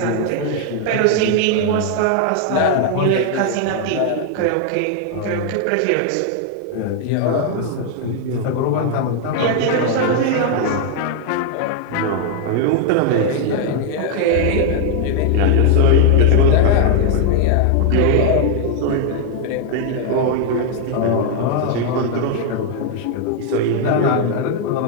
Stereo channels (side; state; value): both; different; correlation 0.00